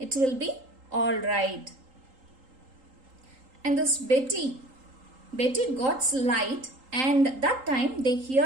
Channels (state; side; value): late; left; 3.8 ms